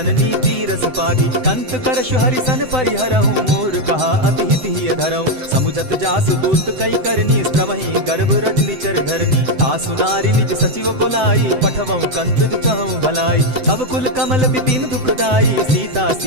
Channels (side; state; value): left; late; 7.8 ms